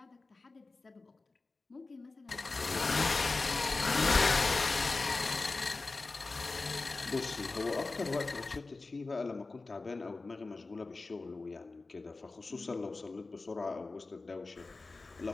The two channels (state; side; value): quieter; right; 3.6 dB